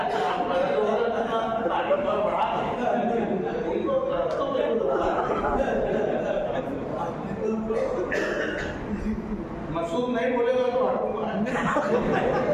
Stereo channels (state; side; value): identical; both; correlation 1.00